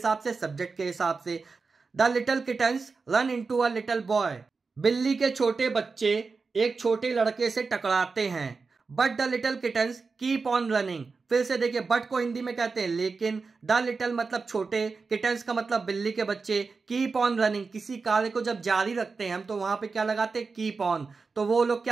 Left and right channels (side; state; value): left; quieter; 4.5 dB